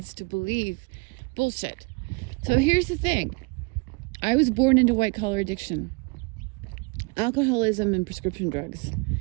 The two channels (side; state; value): left; quieter; 29.7 dB